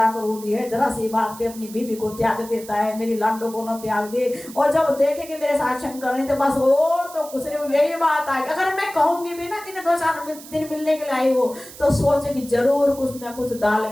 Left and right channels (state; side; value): noise; right; hiss, 17 dB below the sound